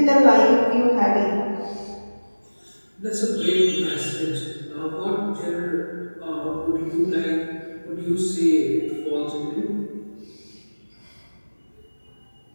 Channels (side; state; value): both; inverted; correlation -1.00